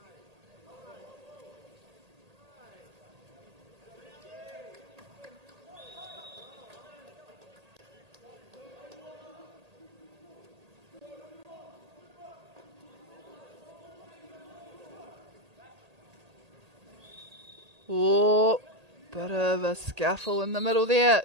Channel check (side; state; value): left; late; 1.8 ms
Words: Oh, bit of a scuffle in the middle there.